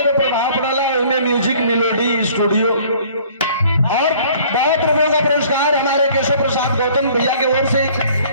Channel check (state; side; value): inverted; both; correlation -0.54